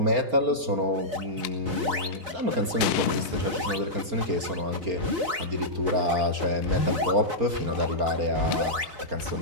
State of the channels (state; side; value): late; left; 4.4 ms